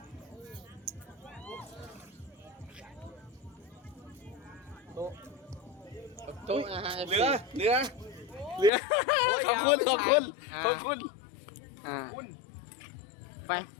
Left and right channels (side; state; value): right; drops out; at 8.7 s